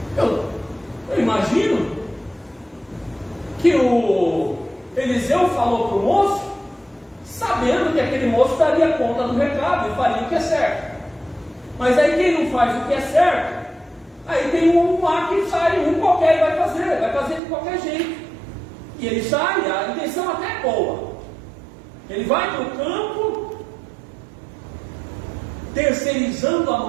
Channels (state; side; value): drops out; left; at 17.4 s